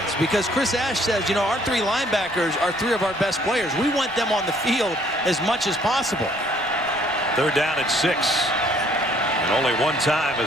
because Chris Ash says, you know, our 3 linebackers are 3 of our best players. We want them on the field as much as possible. 3rd down and 6. And only 1 time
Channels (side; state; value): right; noise; rumble, 24 dB below the sound